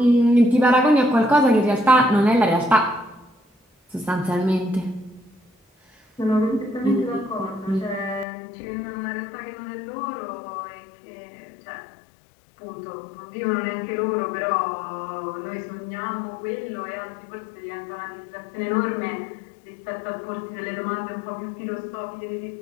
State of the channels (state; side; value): drops out; right; at 8.2 s